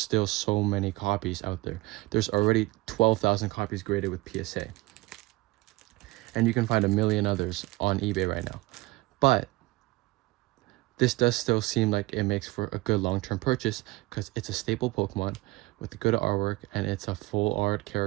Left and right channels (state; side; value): quieter; left; 21.0 dB